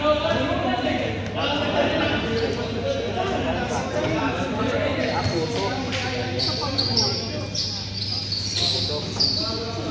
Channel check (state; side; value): identical; both; correlation 1.00